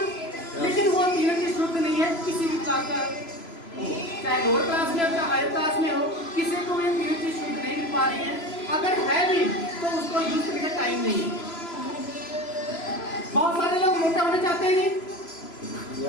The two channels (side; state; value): right; late; 3.0 ms